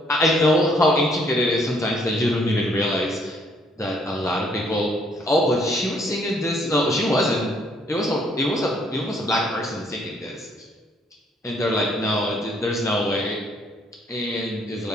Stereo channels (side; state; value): both; normal; correlation 0.66